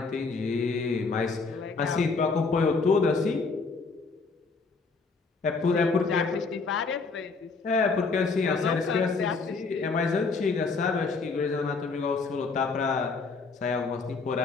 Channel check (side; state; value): right; quieter; 4.3 dB